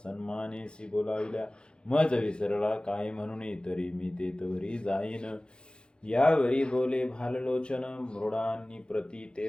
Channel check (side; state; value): right; late; 0.051 ms